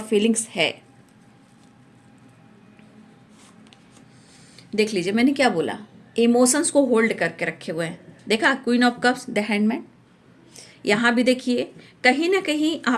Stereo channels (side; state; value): both; identical; correlation 1.00